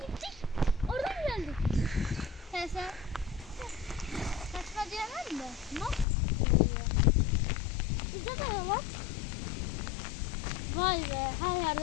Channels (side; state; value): right; drops out; at 6.1 s